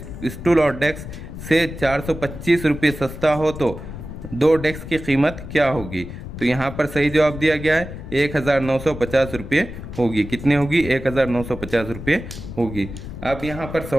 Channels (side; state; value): left; noise; rumble, 11 dB below the sound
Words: और डेस्क से 425 रुपये सस्ता हो तो दो डेस्क की कीमत क्या होगी? तो यहाँ पर सही जवाब दिया गया है 1950 रुपये होगी। कितने होगी? 1950 रुपये होगी। अब यहाँ पर